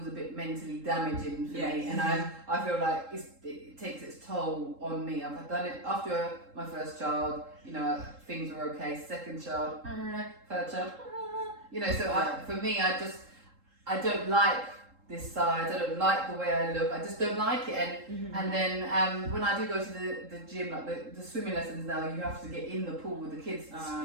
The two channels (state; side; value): late; left; 3.7 ms